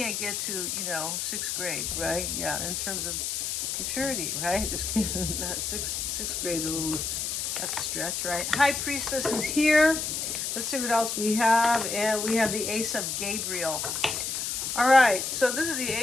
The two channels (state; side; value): noise; left; hiss, 2 dB below the sound